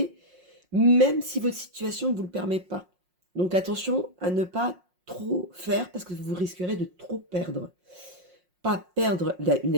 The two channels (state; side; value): late; left; 5.5 ms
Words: même si votre situation ne vous le permet pas. Donc attention à ne pas trop faire parce que vous risquerez de trop perdre. Pas perdre une